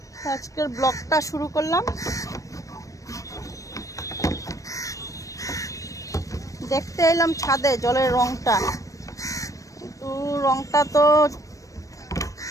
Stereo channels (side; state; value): right; late; 0.16 ms